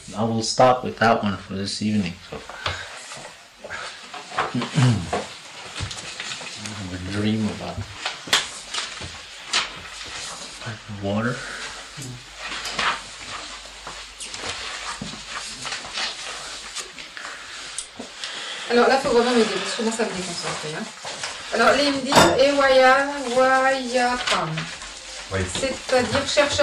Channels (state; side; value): identical; both; correlation 1.00